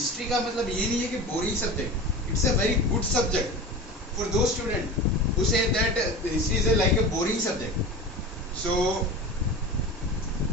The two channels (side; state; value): both; normal; correlation 0.31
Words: का मतलब ये नहीं है कि boring subject, it's a very good subject for those student who say that history is like a boring subject. So